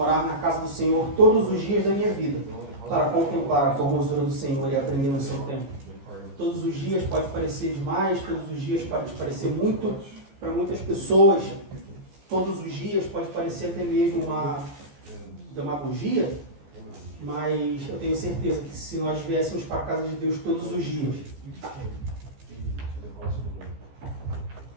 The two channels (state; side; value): late; left; 15 ms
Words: na casa do Senhor todos os dias da minha vida, para contemplar a formosura do Senhor e aprender no seu tempo. Todos os dias pode parecer demais, todos os dias pode parecer muito para muitas pessoas, todos os dias pode parecer até mesmo uma demagogia, mas eu tenho certeza que se nós viéssemos para a casa de Deus todos os dias,